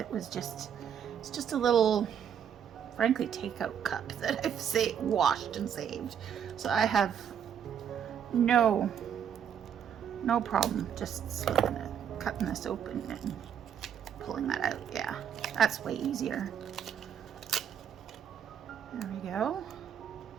just a little, frankly, takeout cup that I've washed and saved, so I have no problem just cutting this open and pulling that out. Yeah, that's way easier. There we go.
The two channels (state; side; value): quieter; left; 8.5 dB